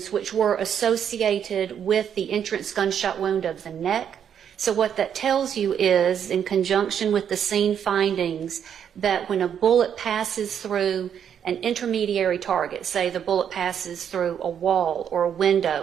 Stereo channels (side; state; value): left; quieter; 8.5 dB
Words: which were associated with the entrance gunshot wound of the neck. So what that tells you is, in conjunction with the scene findings, that when a bullet passes through an intermediary target, say the bullet passes through a wall or a